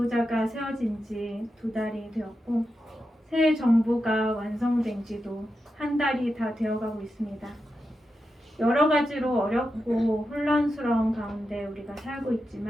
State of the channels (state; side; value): normal; both; correlation 0.88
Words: 세워진 지 2달이 되었고 새 정부가 완성된 지도 1달이 다 되어가고 있습니다. 여러 가지로 어렵고 혼란스러운 가운데 우리가 살고